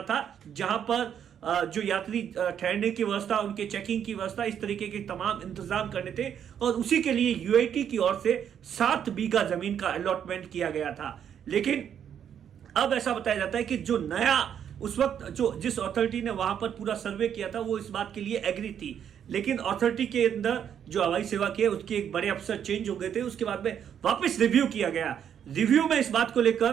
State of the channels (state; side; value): quieter; left; 8.8 dB